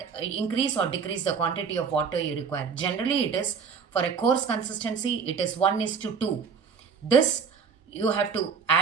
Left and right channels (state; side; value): quieter; left; 5.9 dB